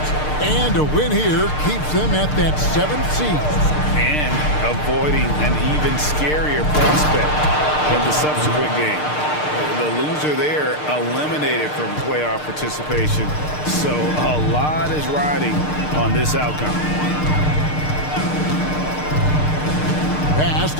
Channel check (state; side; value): late; right; 6.6 ms